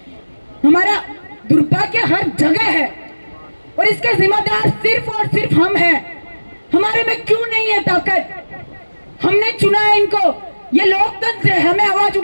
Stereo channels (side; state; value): both; inverted; correlation -1.00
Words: हमारा दुर्भाग्य हर जगह है और इसके जिम्मेदार सिर्फ और सिर्फ हम हैं। हमारे में क्यों नहीं है ताकत? हमने चुना है इनको, ये लोकतंत्र है, हमें आवाज